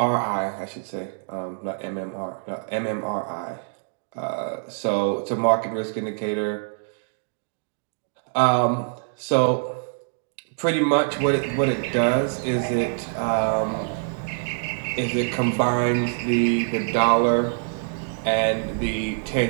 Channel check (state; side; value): silent; left; digital silence